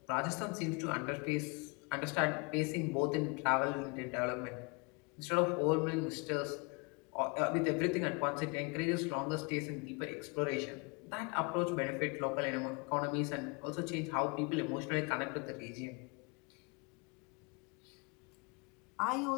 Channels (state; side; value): quieter; right; 31.2 dB